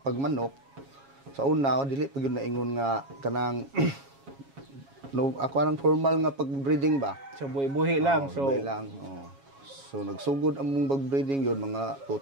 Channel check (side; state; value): left; late; 7.3 ms